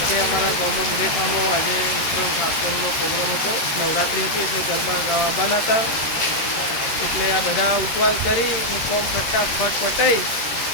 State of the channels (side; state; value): right; late; 13 ms